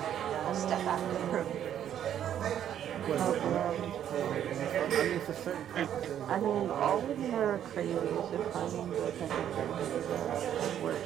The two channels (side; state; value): left; quieter; 10.2 dB